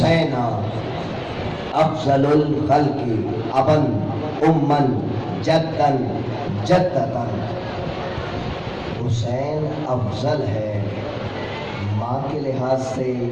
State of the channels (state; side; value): identical; both; correlation 1.00